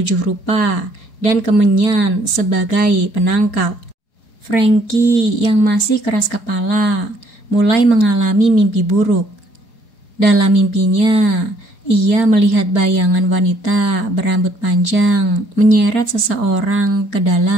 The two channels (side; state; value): right; late; 4.8 ms